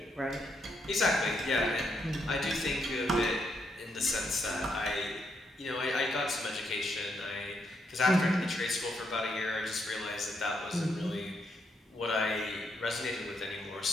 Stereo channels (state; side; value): normal; both; correlation 0.77